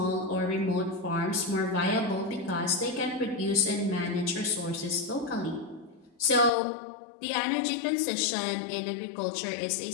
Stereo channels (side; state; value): right; drops out; at 6.5 s